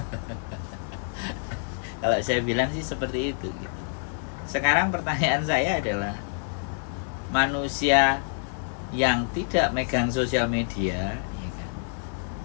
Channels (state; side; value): silent; right; 60 dB below the other